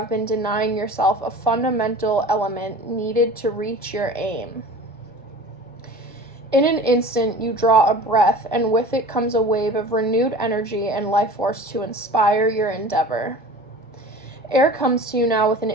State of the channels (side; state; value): both; normal; correlation 0.40